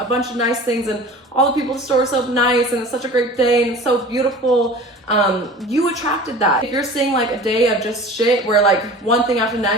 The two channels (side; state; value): both; normal; correlation 0.40